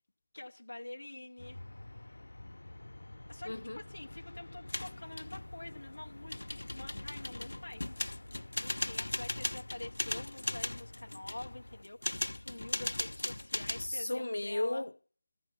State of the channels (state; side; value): inverted; both; correlation -1.00